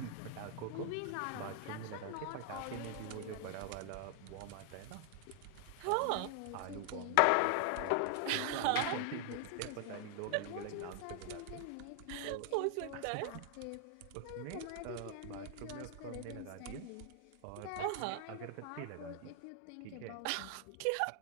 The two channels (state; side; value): different; both; correlation 0.00